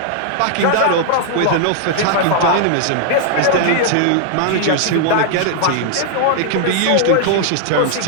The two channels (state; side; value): different; both; correlation -0.01